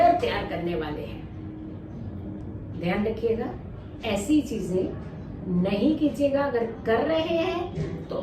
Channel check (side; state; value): both; identical; correlation 1.00